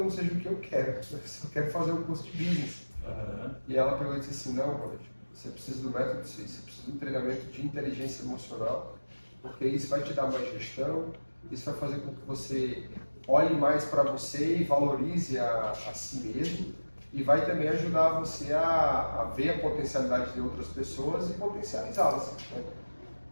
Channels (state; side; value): inverted; both; correlation -1.00